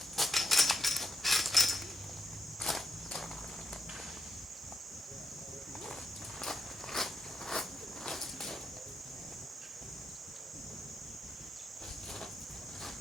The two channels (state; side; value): normal; both; correlation 0.83